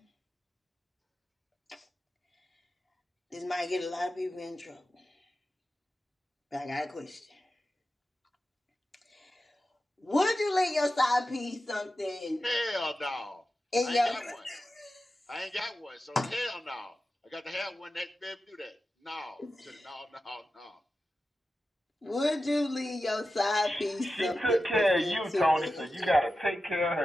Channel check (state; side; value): normal; both; correlation 0.92